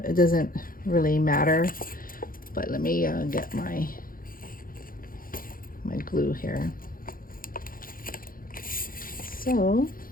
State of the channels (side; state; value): right; late; 0.41 ms